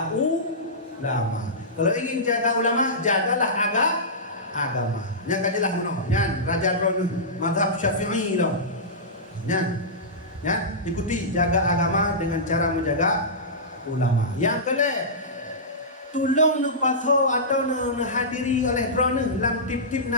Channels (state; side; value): normal; both; correlation -0.16